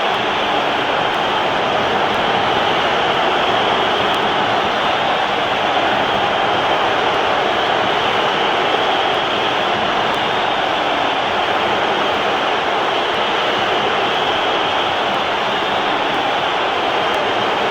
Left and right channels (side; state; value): both; identical; correlation 1.00